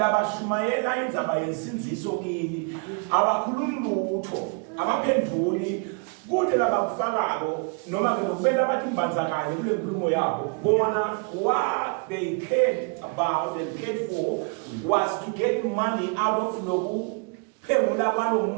indzaba yensinziso kini abakhulumi lutho abaphenduli kude labakufakako noma ke lokubenda bathi imbanzakanye kule nkulumo yabo bona what they cared about and cared for was to get money out of loku phengula kwalo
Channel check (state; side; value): quieter; left; 38.2 dB